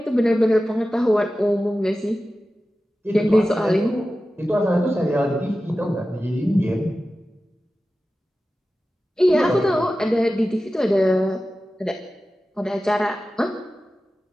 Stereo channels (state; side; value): normal; both; correlation 0.94